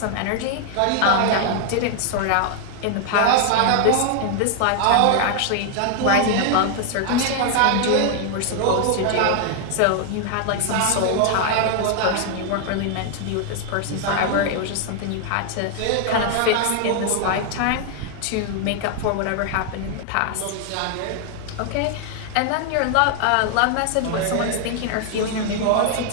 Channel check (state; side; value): different; both; correlation 0.00